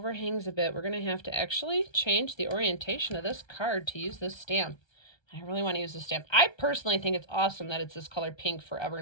a bit. We're going to have to actually change the orientation of this card to use this stamp. I really want to use this stamp. I personally think it's awesome that it's this color pink forever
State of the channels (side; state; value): right; late; 1.3 ms